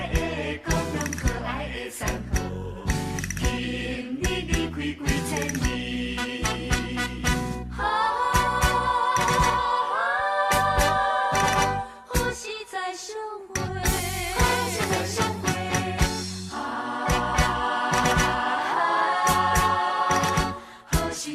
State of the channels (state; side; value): identical; both; correlation 1.00